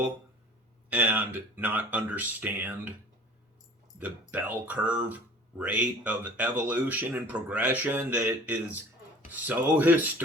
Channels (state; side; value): normal; both; correlation 0.45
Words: and not understand the bell curve rate of evolution and progression that is so